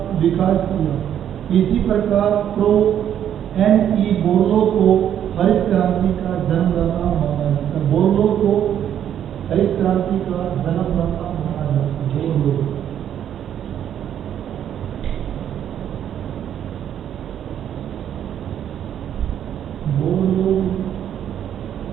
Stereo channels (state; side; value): quieter; left; 9.9 dB